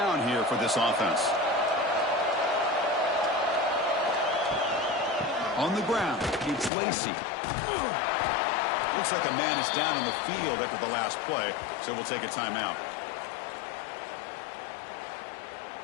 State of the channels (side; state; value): right; drops out; at 6.7 s